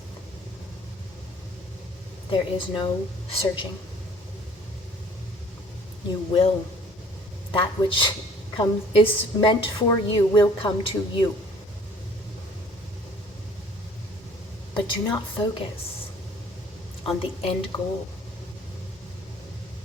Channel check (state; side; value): normal; both; correlation 0.54